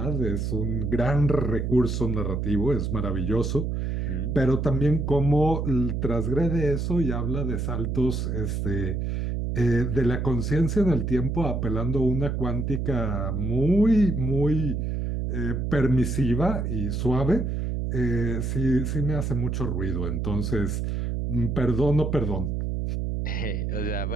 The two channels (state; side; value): noise; right; hum, 1 dB below the sound